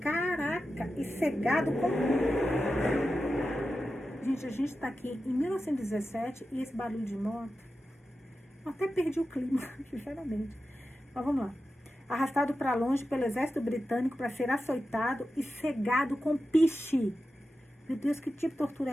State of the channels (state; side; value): normal; both; correlation 0.91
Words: caraca, e cegado com... Gente, a gente está aqui em 1917 e esse barulho de moto... Eu até perdi o clima, sinceramente. Mas vamos lá. Arrastado para longe pelo exército britânico para ser açoitado e cegado com piche. Meu Deus, que tipo de tortura